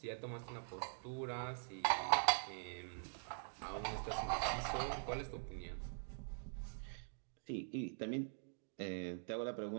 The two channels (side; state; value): left; silent; digital silence